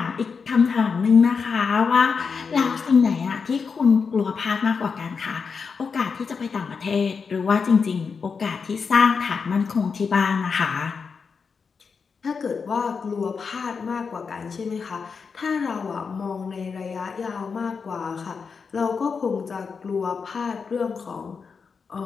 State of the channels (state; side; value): quieter; right; 5.5 dB